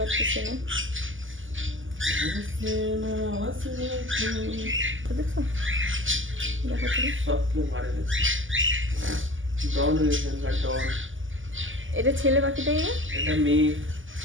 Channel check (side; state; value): left; late; 0.58 ms